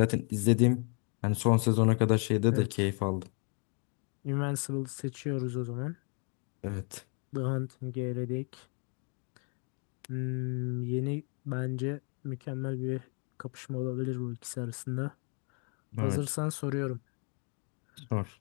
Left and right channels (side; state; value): right; quieter; 37.5 dB